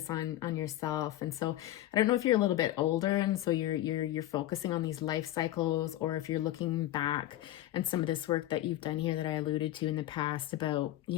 on yourself. And so I don't know if you're a little bit older and so you're focusing on these life cycles, or if you're looking back and some of this work that you've done here that I alluded to in the past about,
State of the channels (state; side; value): quieter; right; 14.2 dB